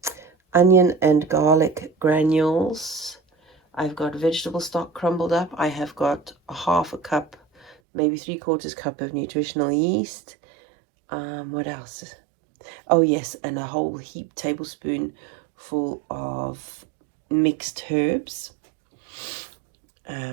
and garlic granules. I've got vegetable stock crumbled up. I have got a 1/2 cup, maybe 3/4 cup of nutritional yeast. What else? Oh yes, and a whole tablespoon full of mixed herbs.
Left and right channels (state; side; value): drops out; left; at 7.8 s